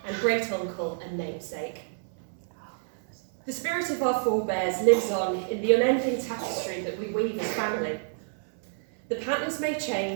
and great-uncle and namesake. The spirit of our forebears lives on in the unending tapestry that we weave as family. The patterns may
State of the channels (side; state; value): left; silent; 59 dB below the other